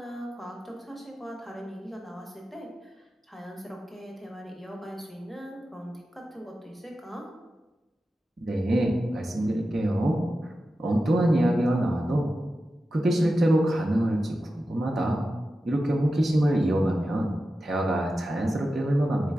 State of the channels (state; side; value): normal; both; correlation 0.92